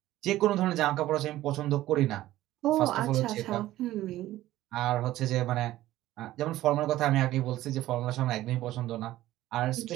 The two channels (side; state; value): left; quieter; 15.2 dB